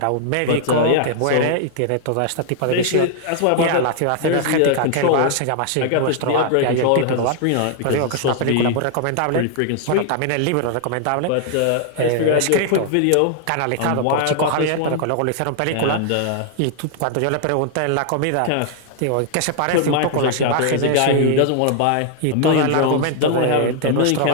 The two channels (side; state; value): both; different; correlation 0.00